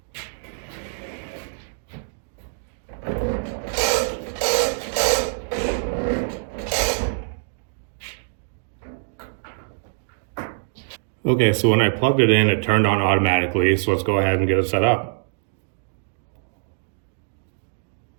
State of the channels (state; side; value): silent; left; 63 dB below the other